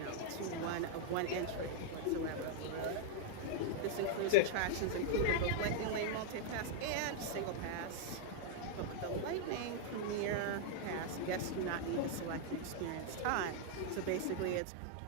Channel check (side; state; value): both; different; correlation -0.01